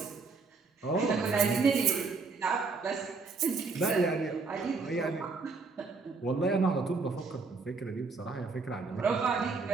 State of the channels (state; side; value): quieter; left; 4.3 dB